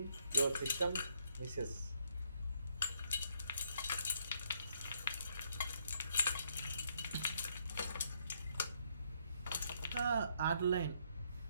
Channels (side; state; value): both; inverted; correlation -0.70